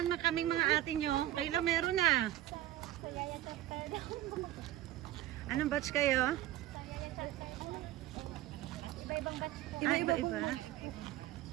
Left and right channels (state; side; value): quieter; left; 14.0 dB